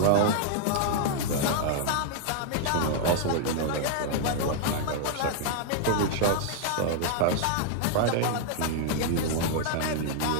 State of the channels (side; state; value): both; different; correlation 0.00